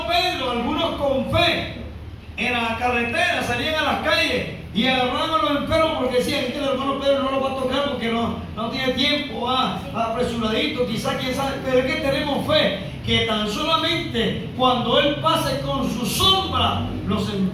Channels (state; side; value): identical; both; correlation 1.00